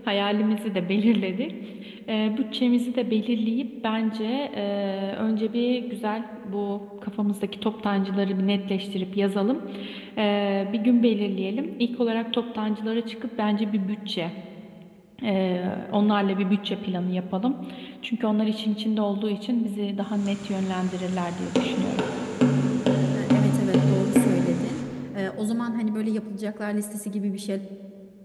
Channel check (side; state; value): both; identical; correlation 1.00